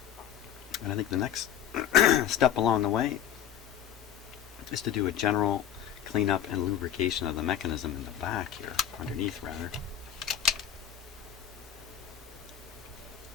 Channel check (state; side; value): quieter; right; 9.7 dB